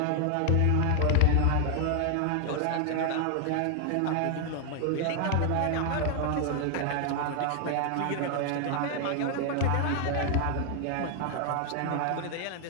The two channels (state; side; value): different; both; correlation 0.00